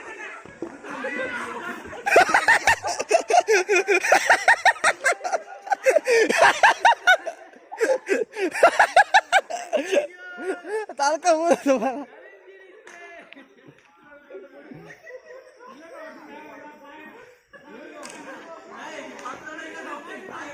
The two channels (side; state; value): both; identical; correlation 1.00